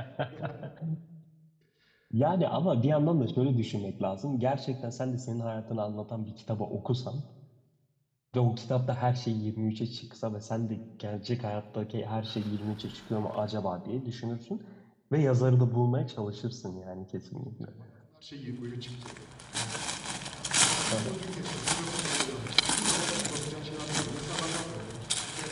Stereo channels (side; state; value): both; identical; correlation 1.00